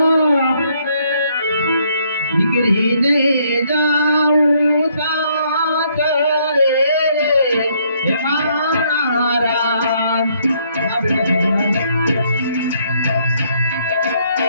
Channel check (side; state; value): both; inverted; correlation -0.69